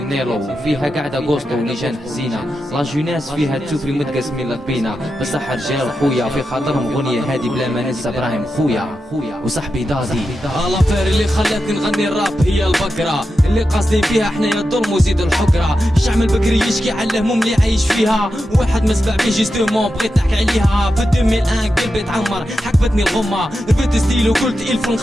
وفيها قاعدة غوستو ولجان حزينة، لا جوناس فيها تشوفري متقسمين لطبينا، بصح رجال خويا في خاطرهم غنية هادي بلا ما ننسى ابراهيم خويا وصاحبي دادي. الافير اللي خلاتني نغني الراب هي البقرة اللي قاصدين فيها حنايا الظلم وزيد الحقرة، الشعب البكري يشكي على الهموم اللي عايش فيها، واحد ما سمع بيه جيستومون بغيت نحكي عليها. في 2001 قلبي تعمر حكفتني الغمة، رفدت ستيل وقلت الف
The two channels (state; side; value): normal; both; correlation 0.89